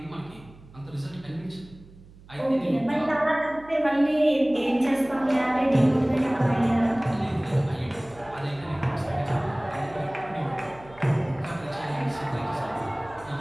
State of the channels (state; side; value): noise; right; hum, 22 dB below the sound